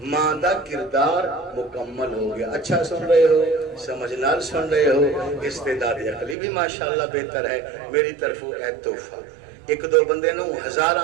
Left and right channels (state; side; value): drops out; left; at 6.4 s